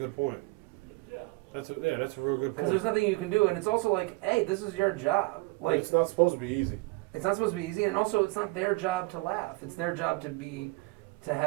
point. That's a real good point. Because there's nothing you can do, and it's also hey, this is your job. It's not supposed to be easy. It's not supposed to be easy, and also it's not their job to laugh. It's their job to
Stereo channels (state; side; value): quieter; left; 24.3 dB